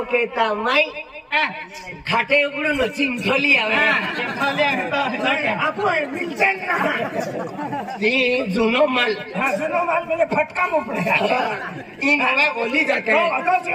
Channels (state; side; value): identical; both; correlation 1.00